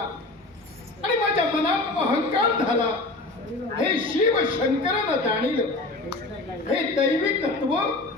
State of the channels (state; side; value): quieter; right; 3.0 dB